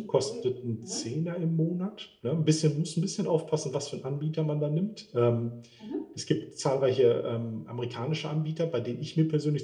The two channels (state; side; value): identical; both; correlation 1.00